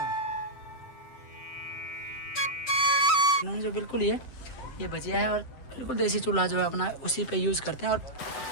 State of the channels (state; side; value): late; right; 7.8 ms